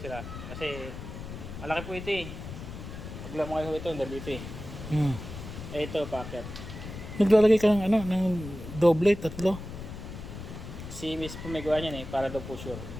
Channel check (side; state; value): left; noise; rumble, 10 dB below the sound